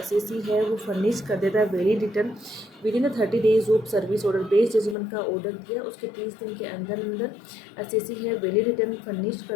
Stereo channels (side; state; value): right; drops out; at 5.0 s